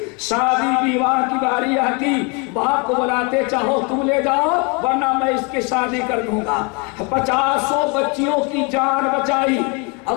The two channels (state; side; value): quieter; right; 32.0 dB